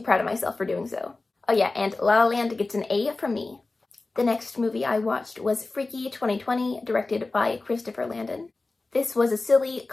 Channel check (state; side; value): quieter; right; 3.4 dB